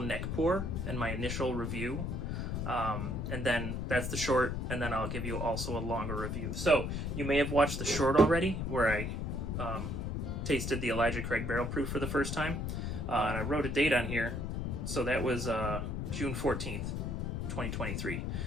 pour and my initial review, and then that's the short, and then I'll give you also a longer review. So you may have watched the short already, where I tasted the Elijah Craig Barrel Proof for the first time, and I wrote a date on here, so that was June 14th, 2023.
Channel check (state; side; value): noise; left; rumble, 2 dB below the sound